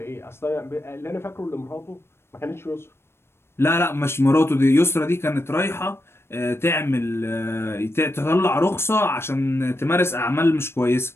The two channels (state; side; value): late; right; 0.12 ms